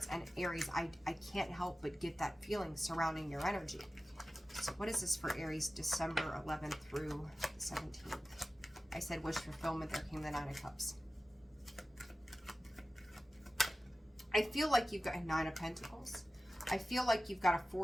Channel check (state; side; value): normal; both; correlation 0.95